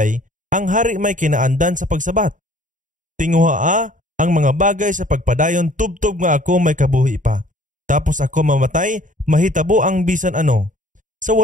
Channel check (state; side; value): late; left; 0.37 ms